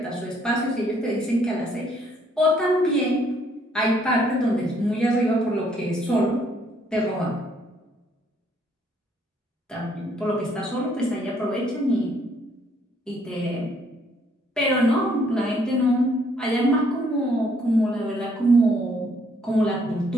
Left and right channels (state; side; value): normal; both; correlation 0.67